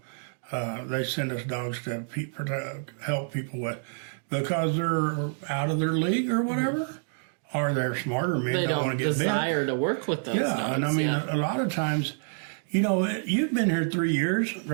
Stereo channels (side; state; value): left; silent; digital silence